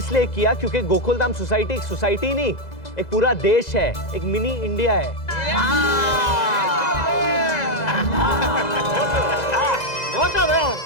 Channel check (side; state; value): right; late; 2.0 ms